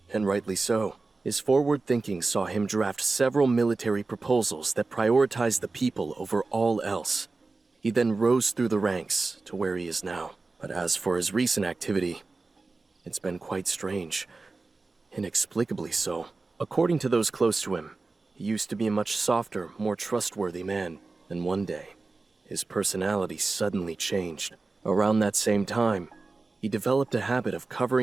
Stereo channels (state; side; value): quieter; left; 3.7 dB